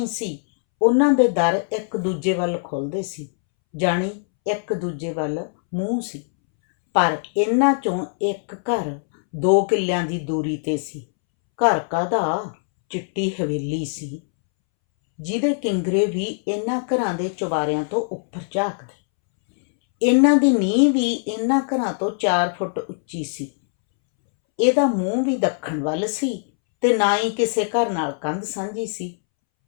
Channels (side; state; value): right; silent; 64 dB below the other